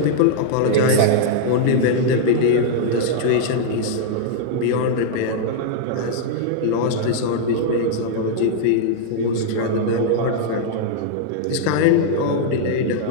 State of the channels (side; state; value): both; different; correlation -0.01